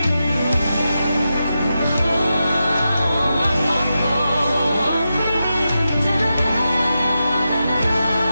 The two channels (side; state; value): both; inverted; correlation -0.89